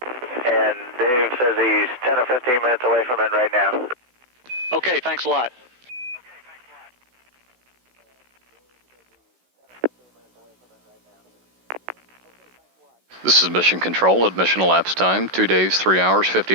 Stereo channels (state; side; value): late; left; 16 ms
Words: And Dave says he's 10 or 15 minutes away from it right now. Okay, thanks a lot. This is Mission Control at mission elapsed time, 2 days, 3 hours,